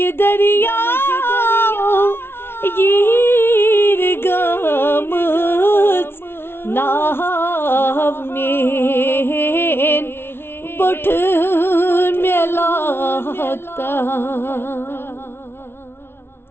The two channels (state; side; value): late; right; 0.11 ms